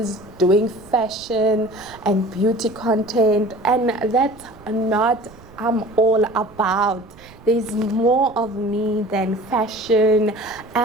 doing fashion and beauty content, and that's not I'm all about. There's more of me than fashion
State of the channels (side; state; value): right; noise; rumble, 22 dB below the sound